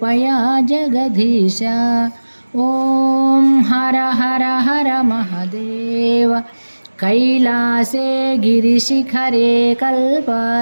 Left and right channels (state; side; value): inverted; both; correlation -1.00